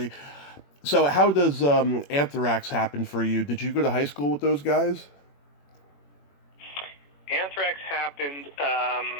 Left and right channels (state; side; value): late; right; 21 ms